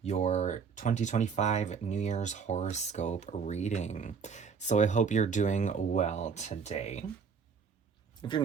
your 2025 New Year's horoscope reading. So I hope you're doing well today. If you're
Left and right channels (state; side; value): quieter; left; 6.0 dB